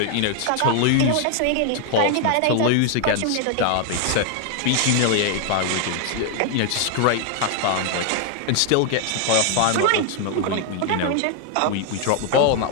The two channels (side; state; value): both; different; correlation 0.00